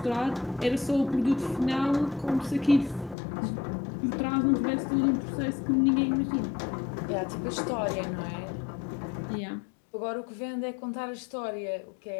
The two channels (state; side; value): drops out; right; at 3.2 s